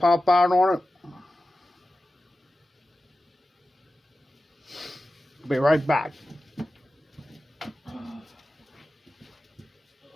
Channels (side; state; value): both; normal; correlation 0.94